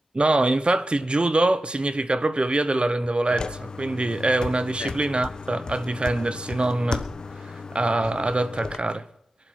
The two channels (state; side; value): normal; both; correlation 0.92